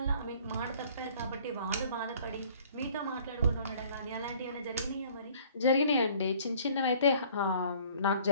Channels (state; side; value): inverted; both; correlation -0.54